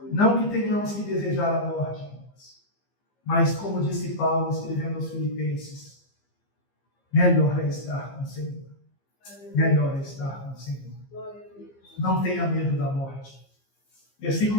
Não que tenhamos que desejar a morte, mas como disse Paulo escrevendo aos Filipenses, melhor é estar com o Senhor. Melhor é estar com o Senhor. Não tenha medo da morte.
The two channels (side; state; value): right; late; 15 ms